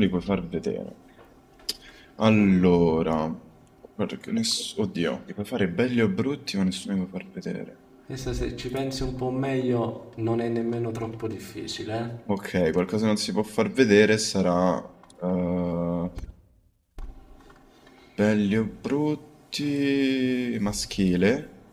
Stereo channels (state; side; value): identical; both; correlation 1.00